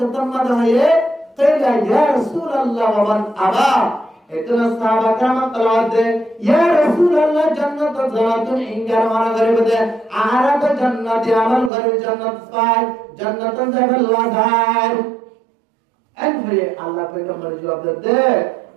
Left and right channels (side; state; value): left; drops out; at 11.7 s